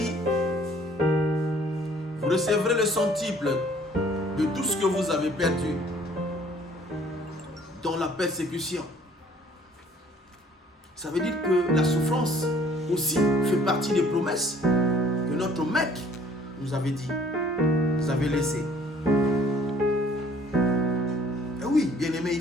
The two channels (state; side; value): normal; both; correlation 0.57